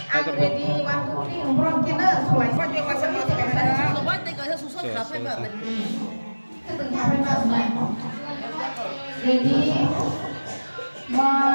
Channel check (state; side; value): inverted; both; correlation -1.00